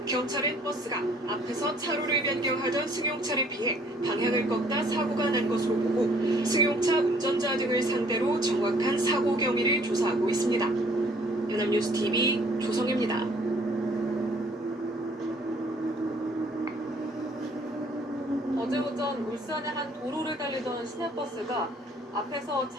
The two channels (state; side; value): normal; both; correlation 0.60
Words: 경찰은 버스가 앞에서 차로를 변경하던 승용차를 피해 방향을 꺾다 사고가 난 것으로 보고 승용차 운전자 등을 상대로 정확한 사고 경위를 조사하고 있습니다. 연합뉴스 TV 조성입니다. 어제 오전 울산의 한 도로를 달리던 시내버스가 앞에서